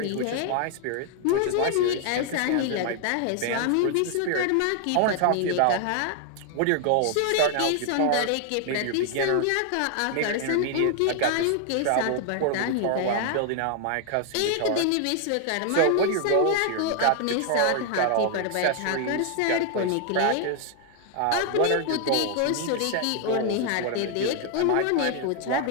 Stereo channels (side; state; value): both; different; correlation 0.00